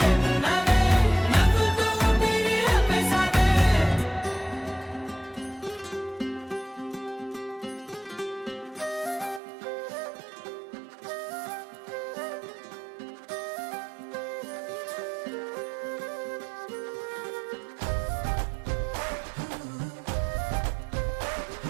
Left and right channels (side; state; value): left; drops out; at 9.4 s